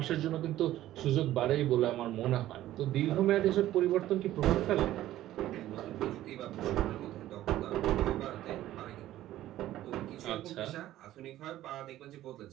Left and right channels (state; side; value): quieter; left; 14.1 dB